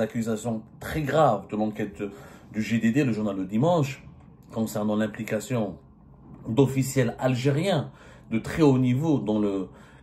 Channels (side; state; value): both; identical; correlation 1.00